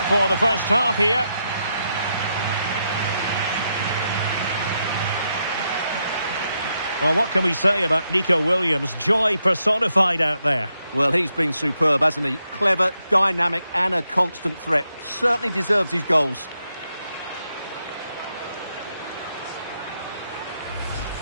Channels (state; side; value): inverted; both; correlation -0.82